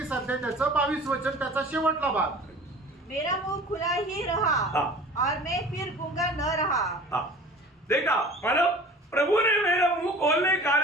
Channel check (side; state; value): both; normal; correlation 0.43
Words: अध्याय त्याचं 22 वचन त्याचा शेवटला भाग। मेरा मुंह खुला ही रहा और मैं फिर गूंगा न रहा। देखा, मतलब प्रभु ने मेरा मुंह खोलने के